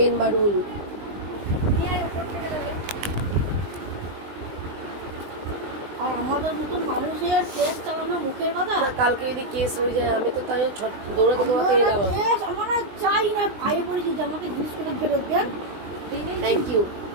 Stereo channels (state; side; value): late; left; 20 ms